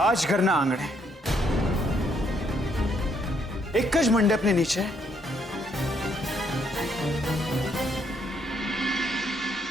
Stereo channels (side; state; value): both; normal; correlation 0.71